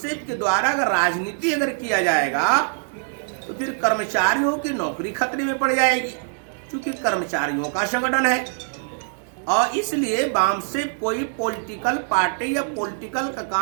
के द्वारा अगर राजनीति अगर किया जाएगा तो फिर कर्मचारियों की नौकरी खतरे में पड़ जाएगी, क्योंकि कर्मचारियों का संगठन है। और इसलिए बामसेफ कोई पॉलिटिकल पार्टी या पॉलिटिकल का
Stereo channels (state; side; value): silent; left; 63 dB below the other